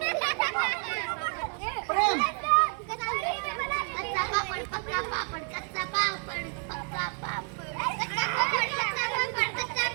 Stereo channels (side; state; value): left; quieter; 38.7 dB